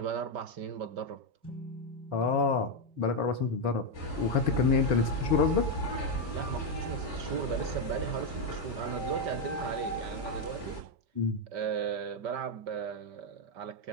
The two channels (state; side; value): late; left; 5.2 ms